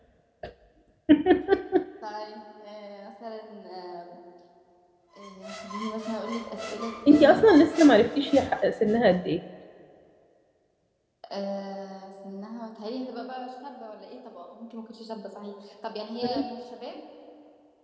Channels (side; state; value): both; identical; correlation 1.00